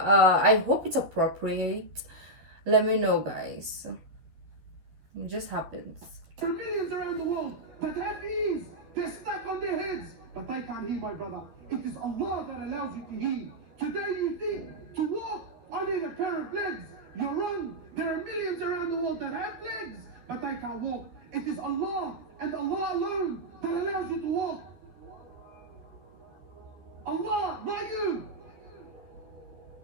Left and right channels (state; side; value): late; left; 12 ms